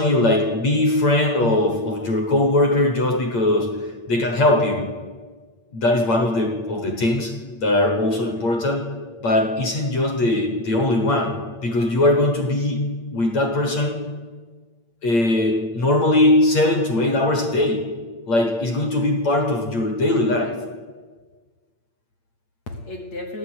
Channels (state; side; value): late; right; 8.7 ms